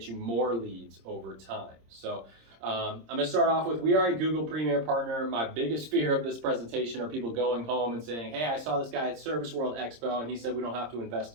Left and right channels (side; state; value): left; late; 26 ms